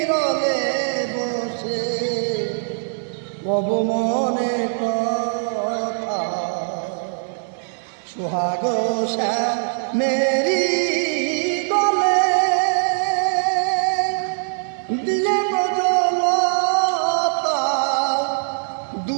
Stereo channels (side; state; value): left; silent; digital silence